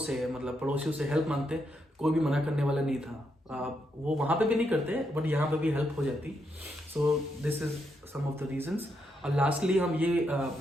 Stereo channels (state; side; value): normal; both; correlation 0.80